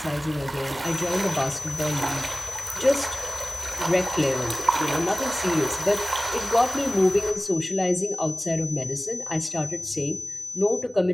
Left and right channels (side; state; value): both; normal; correlation 0.98